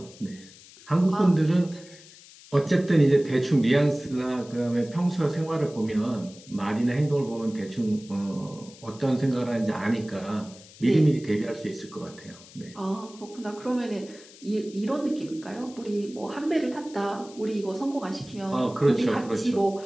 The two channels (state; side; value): noise; left; hiss, 21 dB below the sound